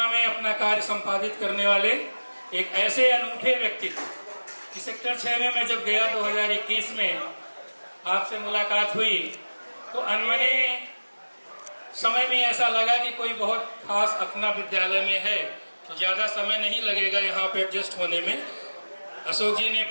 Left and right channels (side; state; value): both; inverted; correlation -1.00